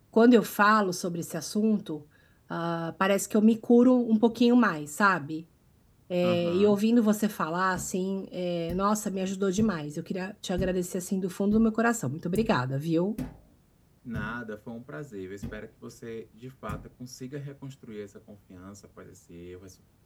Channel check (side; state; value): both; identical; correlation 1.00